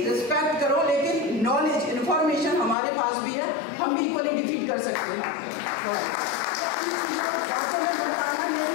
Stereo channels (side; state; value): right; drops out; at 2.8 s